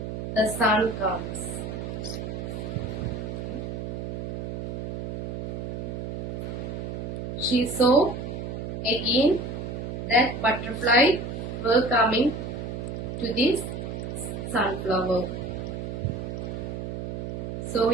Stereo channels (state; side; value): noise; right; hum, 5 dB below the sound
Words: the sun comes. She saw again that butterfly were coming to this sunflower. So